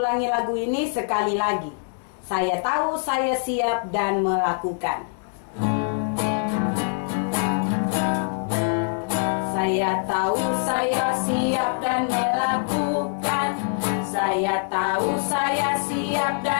lagu ini sekali lagi. Saya tahu saya siap dan melakukan. Saya tahu saya siap dan melakukan. Saya tahu saya siap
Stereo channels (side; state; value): right; silent; 59 dB below the other